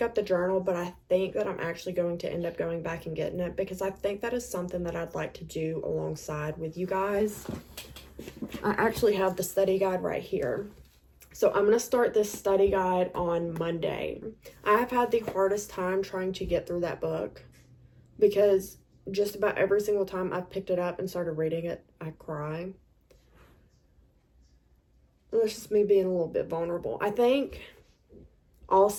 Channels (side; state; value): both; identical; correlation 1.00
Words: up the journal, but I think that I'm actually going to end up going back and getting it because I think that is something that I'd like to do alongside with you guys. I actually have the study guide right here. So I'm going to start this study guide on Monday. I have had the hardest time trying to get through that book because just about every single time I've picked it up and started reading it, I cry. It's just me being a little bit vulnerable. I think